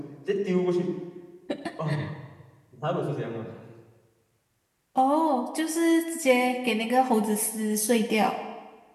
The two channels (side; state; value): both; identical; correlation 1.00